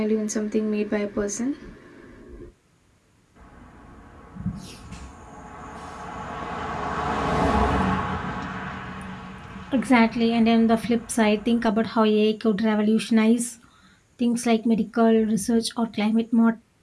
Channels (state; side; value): identical; both; correlation 1.00